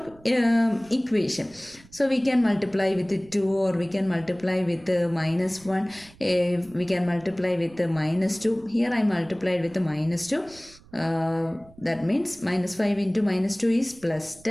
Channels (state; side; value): noise; right; rumble, 25 dB below the sound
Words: equation. So we can multiply with 2, or we can multiply with minus 1. We can multiply with minus 2. Here I multiplied with minus 2. That means minus 5 into minus 2 is plus